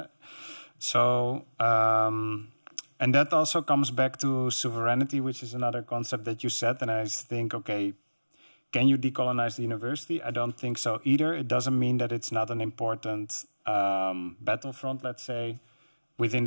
And that also comes back to sovereignty, which is another concept that you said, and I think, okay, can you decolonize the university? I don't think so either. It doesn't mean that it's not an important battlefront, let's say, within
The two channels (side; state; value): both; inverted; correlation -1.00